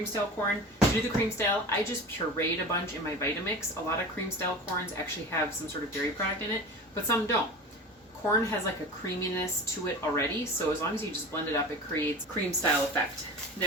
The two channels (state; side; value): normal; both; correlation 0.34